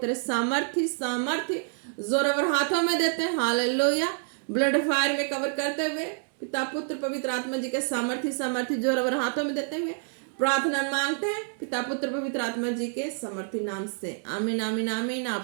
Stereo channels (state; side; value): silent; left; 60 dB below the other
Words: सामर्थ्य जोरावर हाथों में देते हैं। हालेलुया। ब्लड फायर में कवर करते हुए पिता पुत्र पवित्र आत्मा जी के सामर्थ्य जोरावर हाथों में देते हुए प्रार्थना मांगते हैं पिता पुत्र पवित्र आत्मा जी के समर्थी नाम से। आमीन आमीन आमीन।